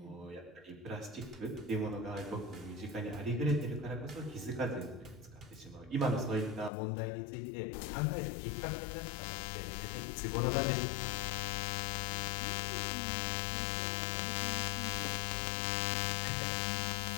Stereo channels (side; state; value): right; drops out; at 6.7 s